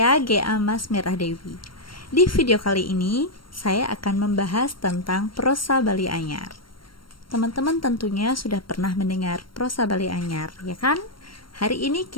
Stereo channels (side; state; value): right; late; 0.73 ms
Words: G.A. Mas Merah Dewi. Di video kali ini, saya akan membahas tentang prosa Bali Anyar. Teman-teman tentunya sudah pernah mendengar prosa Bali Anyar, ya kan? Hari ini